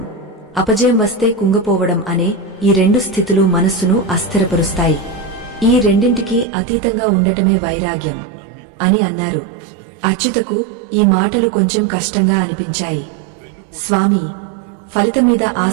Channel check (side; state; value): left; drops out; at 6.5 s